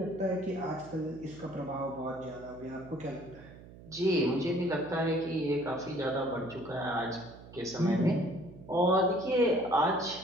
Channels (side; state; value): right; noise; hum, 18 dB below the sound